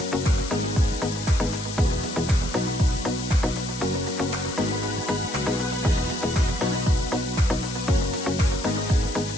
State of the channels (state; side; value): noise; left; hiss, 10 dB below the sound